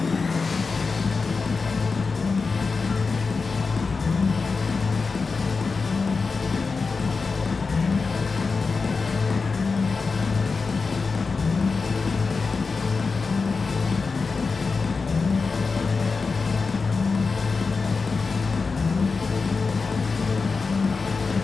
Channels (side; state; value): right; quieter; 4.5 dB